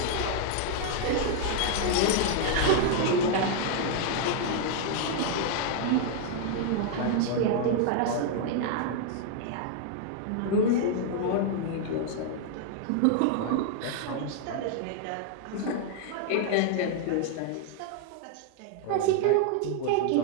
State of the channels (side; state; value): both; different; correlation 0.00